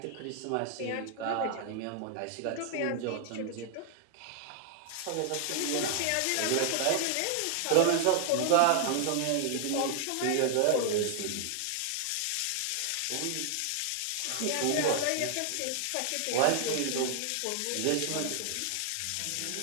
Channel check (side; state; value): both; different; correlation 0.00